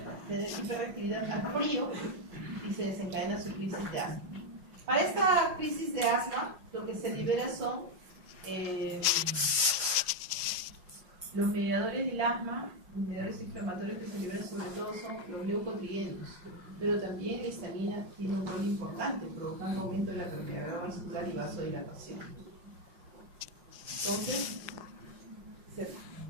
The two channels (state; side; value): late; left; 5.6 ms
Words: tener hiperreactividad al frío y se desencadena su crisis de asma. Para esta crisis de asma, lo que se libera son los mediadores del asma, los mediadores inflamatorios que se liberan sobre todo son los leucotrienos, pero también la histamina tiene un rol importante, provocando aumento de la permeabilidad vascular y vasodilatación. Entonces,